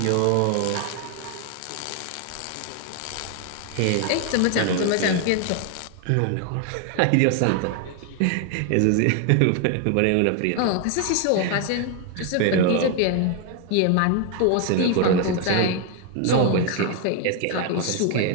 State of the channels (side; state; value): both; different; correlation 0.01